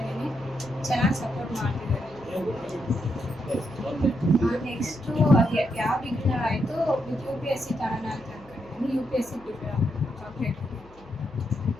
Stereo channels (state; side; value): noise; left; hum, 24 dB below the sound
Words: ಚೆನ್ನಾಗಿ ಸಪೋರ್ಟ್ ಮಾಡ್ತಿದ್ದಾರೆ. ನೆಕ್ಸ್ಟು ಅದು ಯಾವ ಡಿಗ್ರಿ ಆಯಿತು with U P S C ತಗೋಣ ಅಂತ ಅಂದ್ಕೊಂಡಿದ್ದೀನಿ. U P S C prepare ಆಗಬೇಕು.